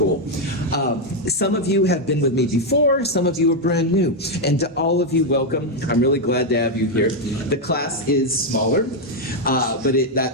Some of you have been with me before. Some of you are brand new. And to all of you, welcome. I'm really glad to have you here. The class is smaller. But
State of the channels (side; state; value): both; normal; correlation 0.02